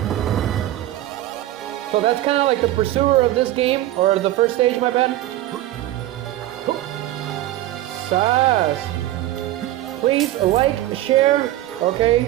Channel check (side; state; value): left; quieter; 14.7 dB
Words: So that's kind of like the pursuer of this game, or the first stage, my bad. Sass! Please like, share,